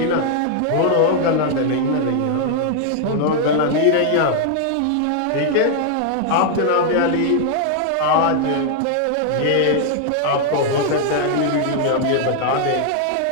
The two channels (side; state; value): both; different; correlation 0.00